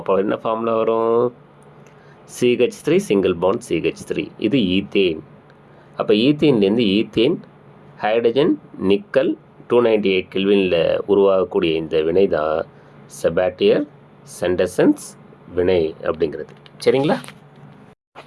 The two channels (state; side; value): identical; both; correlation 1.00